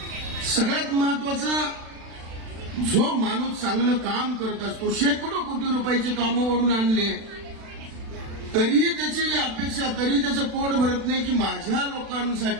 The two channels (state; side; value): late; left; 36 ms